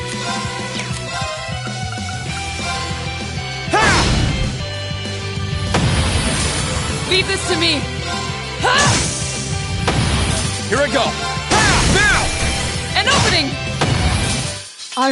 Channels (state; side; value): identical; both; correlation 1.00